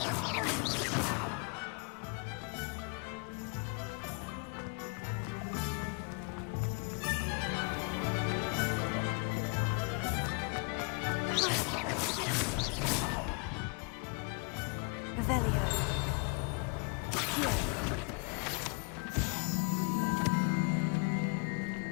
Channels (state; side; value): quieter; right; 35.1 dB